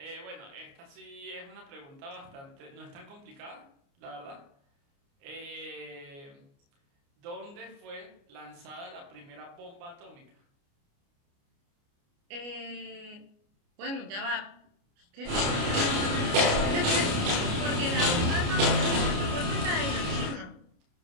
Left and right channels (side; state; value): left; late; 29 ms